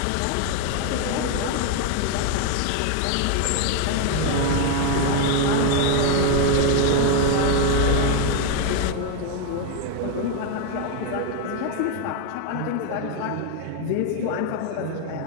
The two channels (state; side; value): different; both; correlation 0.01